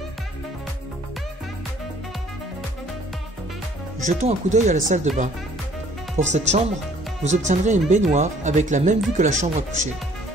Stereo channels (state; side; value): normal; both; correlation 0.58